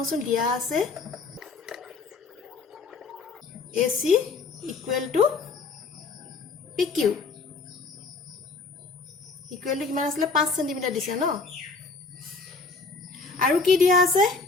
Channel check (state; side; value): quieter; right; 4.2 dB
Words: দিয়া আছে AC equal to PQ equal to কিমান আসলে 5 cm দিছে ন আৰু কি দিয়া আছে